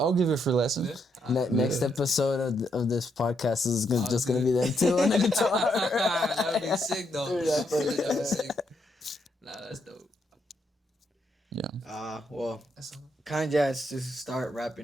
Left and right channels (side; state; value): both; normal; correlation 0.77